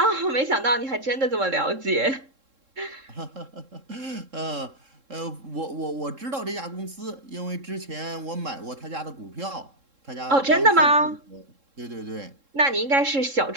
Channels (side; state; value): left; late; 3.7 ms